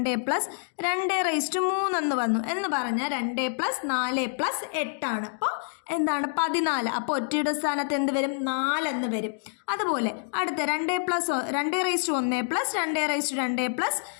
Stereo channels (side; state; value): right; silent; digital silence